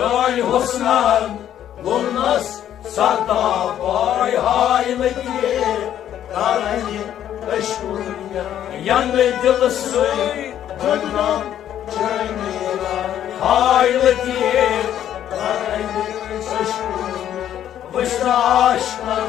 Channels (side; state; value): right; quieter; 10.8 dB